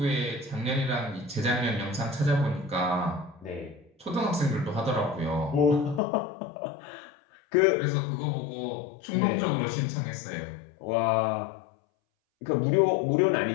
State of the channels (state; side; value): drops out; right; at 6.0 s